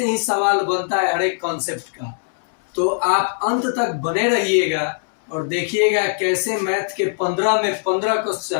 ही सवाल बनता है हर एक कॉन्सेप्ट का। तो आप अंत तक बने रहिएगा और देखिएगा कैसे मैथ के 15 में 15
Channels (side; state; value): right; silent; 65 dB below the other